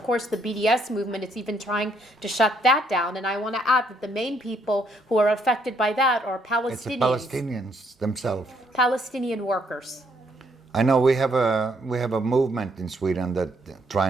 course the BDS movement is even trying to shut that down. And I want to add that the main people who are affected by that are It's the Palestinians, Palestinians themselves. Palestinian workers. I know we have a movement in Sweden that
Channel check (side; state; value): both; normal; correlation 0.71